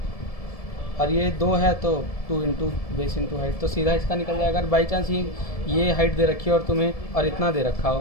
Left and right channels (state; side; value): late; right; 1.7 ms